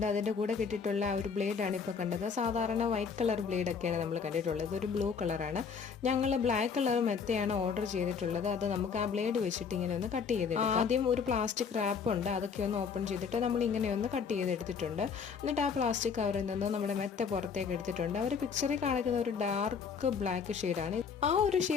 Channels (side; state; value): right; quieter; 6.1 dB